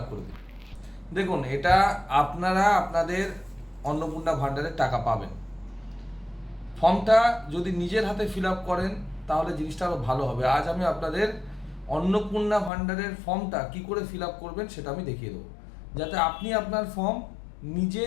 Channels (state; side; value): drops out; right; at 12.7 s